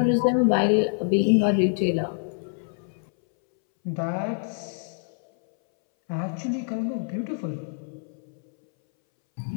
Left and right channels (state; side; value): silent; right; 61 dB below the other